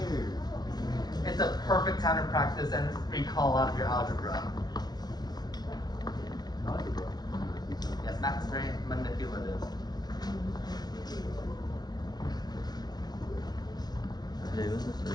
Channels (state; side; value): late; right; 0.19 ms